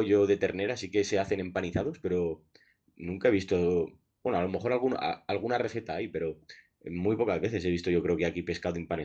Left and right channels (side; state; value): both; identical; correlation 1.00